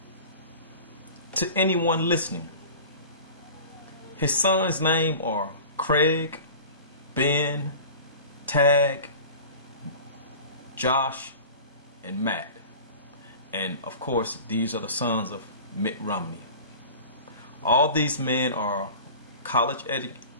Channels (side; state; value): both; inverted; correlation -0.39